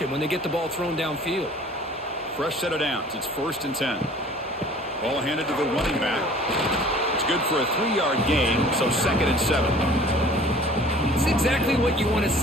when they get the ball thrown downfield. Fresh set of downs. It's 1st and 10. Ball handed to the running back. It's good for a 3-yard gain, so 2nd and 7. It's exactly what you want to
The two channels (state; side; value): normal; both; correlation 0.49